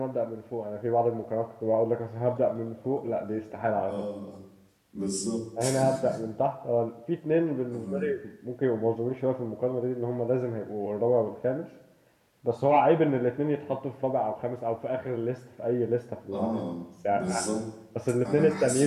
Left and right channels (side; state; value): both; identical; correlation 1.00